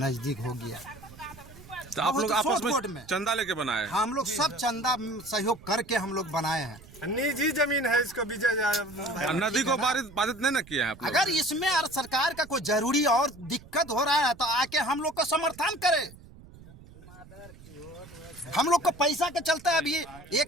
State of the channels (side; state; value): right; noise; rumble, 20 dB below the sound